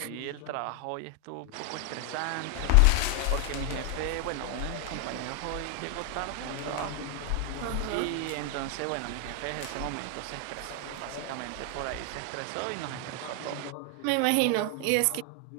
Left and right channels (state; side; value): different; both; correlation 0.00